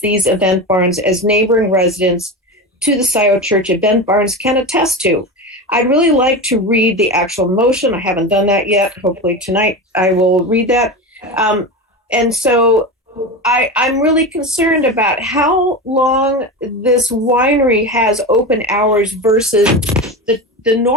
event barns, as neighboring residents to the Scio Church event barns can attest to. I'd really like to read the actual motion. I haven't done that yet. Hopefully tonight I will read that. And so I'm really concerned about how long this winery has open hours versus the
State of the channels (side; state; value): both; normal; correlation 0.23